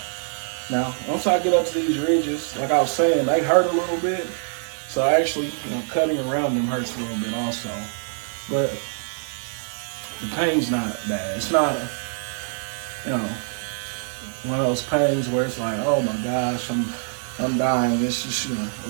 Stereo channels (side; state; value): left; silent; digital silence